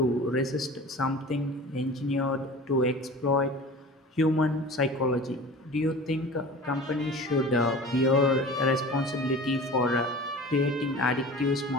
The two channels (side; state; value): both; normal; correlation 0.39